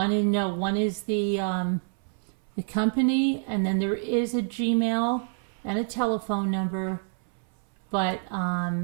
is the company, and then there is a Gmail and a telephone number, but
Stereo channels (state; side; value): silent; left; 60 dB below the other